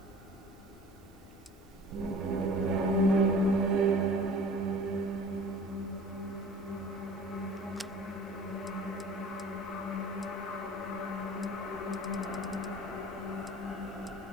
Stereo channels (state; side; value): noise; right; hiss, 29 dB below the sound